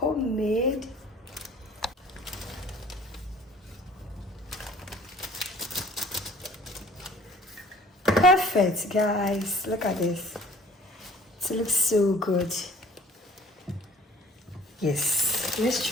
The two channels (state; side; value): normal; both; correlation 0.52